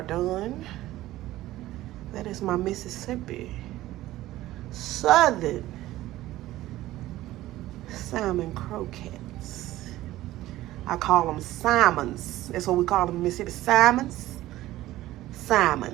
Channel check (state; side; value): quieter; left; 15.8 dB